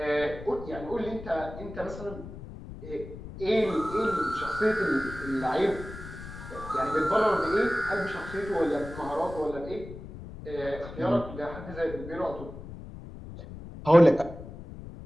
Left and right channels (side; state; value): left; noise; rumble, 12 dB below the sound